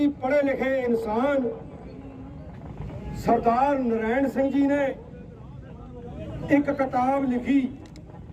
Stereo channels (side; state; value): both; identical; correlation 1.00